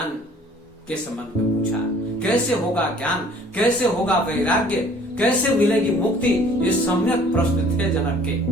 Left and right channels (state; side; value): normal; both; correlation 0.54